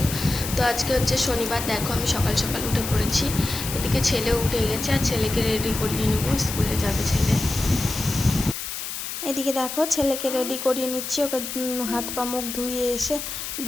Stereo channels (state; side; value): noise; left; hiss, 6 dB below the sound